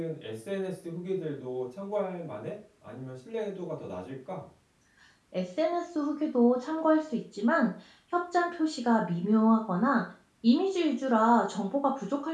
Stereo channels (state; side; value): identical; both; correlation 1.00